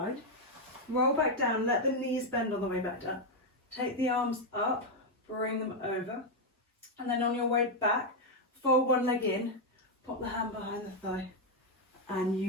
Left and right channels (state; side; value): normal; both; correlation 0.01